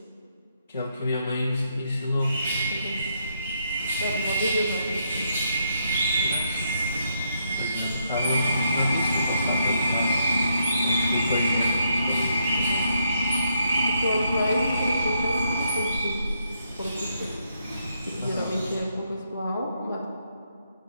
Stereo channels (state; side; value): inverted; both; correlation -0.77